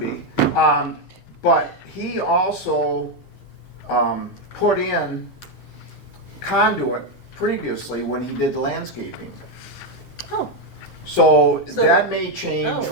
But he also put in conduit previously when he did landscaping. Oh, So So- that may change Oh,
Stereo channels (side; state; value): both; normal; correlation 0.05